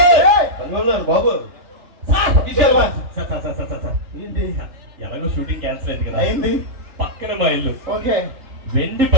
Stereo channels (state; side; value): late; left; 3.3 ms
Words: బాబు ఎలాగో షూటింగ్ క్యాన్సిల్ అయింది కదా, అయింది. పక్కన మా ఇల్లు ఓకే వెండి